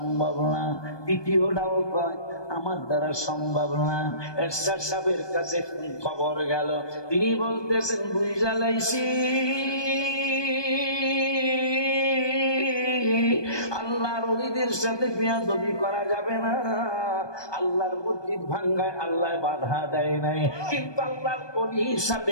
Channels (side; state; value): right; late; 1.2 ms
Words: না, তৃতীয়টাও কয় আমার দ্বারা সম্ভব না। এরশাদ সাহেবের কাছে খবর গেল, তিনি বলতেছেন, বুঝা লাইছি আল্লাহর ওলিদের সাথে বেয়াদবি করা যাবে না। আল্লাহর মসজিদ ভাঙ্গায় আল্লাহ বাধা দেয় নাই, কিন্তু আল্লাহর ওলির